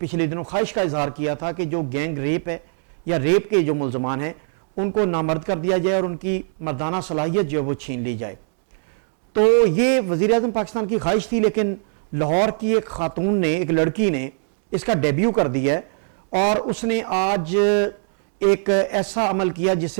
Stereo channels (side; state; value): left; silent; digital silence